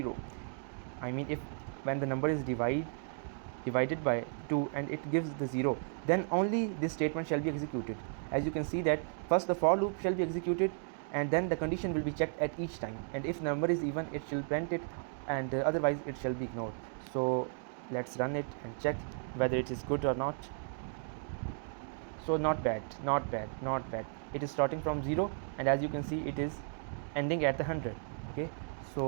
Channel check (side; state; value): left; silent; 55 dB below the other